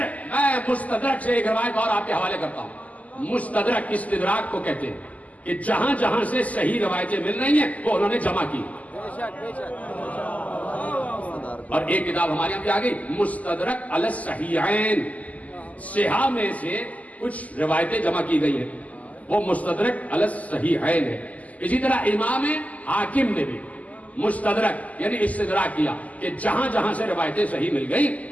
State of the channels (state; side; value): late; right; 0.074 ms